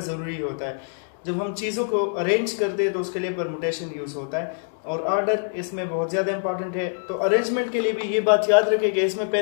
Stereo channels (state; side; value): silent; right; digital silence